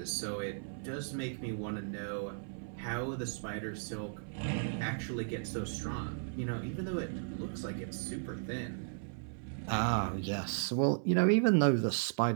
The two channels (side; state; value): left; silent; 54 dB below the other